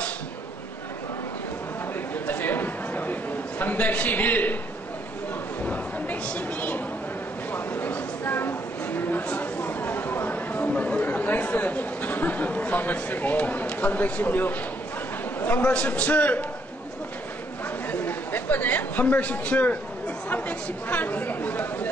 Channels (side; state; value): both; normal; correlation 0.71